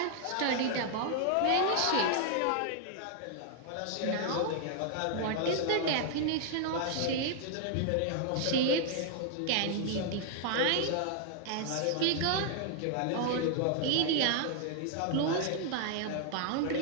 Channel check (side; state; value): both; different; correlation 0.00